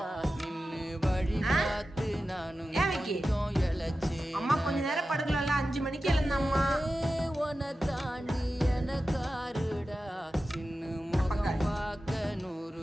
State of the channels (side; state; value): both; normal; correlation 0.93